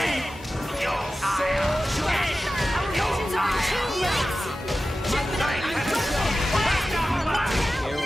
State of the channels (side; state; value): both; normal; correlation 0.94